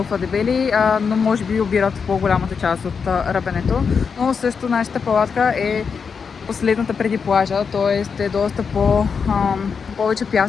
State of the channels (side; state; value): right; quieter; 5.9 dB